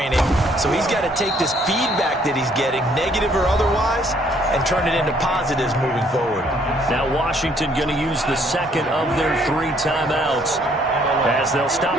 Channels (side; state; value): both; normal; correlation 0.65